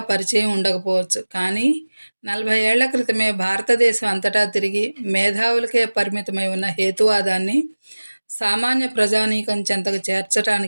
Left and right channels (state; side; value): inverted; both; correlation -1.00